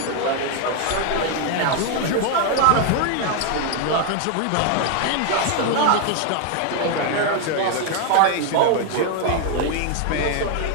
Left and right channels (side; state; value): both; different; correlation 0.00